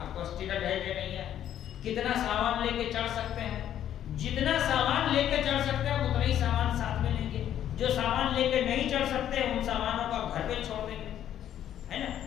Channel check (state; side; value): quieter; right; 10.8 dB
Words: کو ٹکٹ ہے کہ نہیں ہے, کتنا سامان لے کے چڑھ سکتے ہیں. جتنا سامان لے کے چڑھ سکتے ہیں اتنا ہی سامان ساتھ میں لیں گے. جو سامان لے کے نہیں چڑھ سکتے ان سامانوں کو گھر پہ چھوڑ دیں گے, ہے نا.